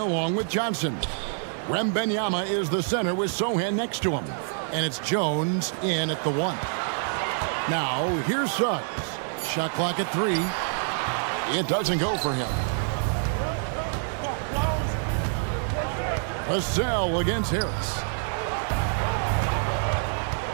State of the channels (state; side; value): silent; left; 60 dB below the other